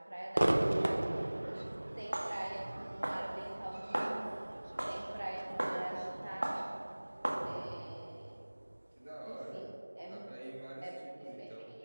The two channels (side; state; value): both; inverted; correlation -1.00